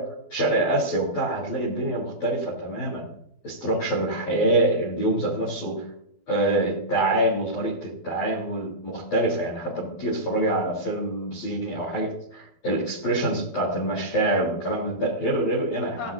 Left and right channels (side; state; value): right; late; 12 ms